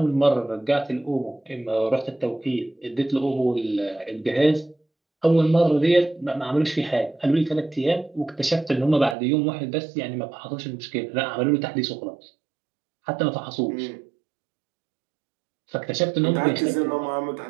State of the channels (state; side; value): drops out; left; at 9.2 s